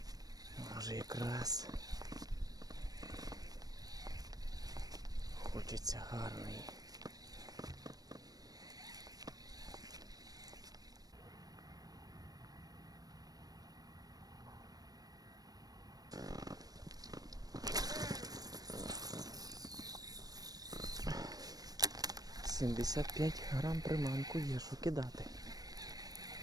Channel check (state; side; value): late; left; 0.19 ms